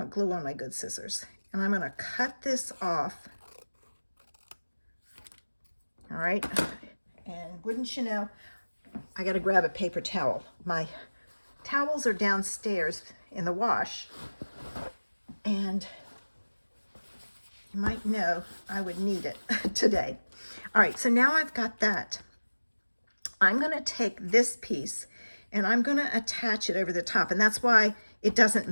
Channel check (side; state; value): both; inverted; correlation -1.00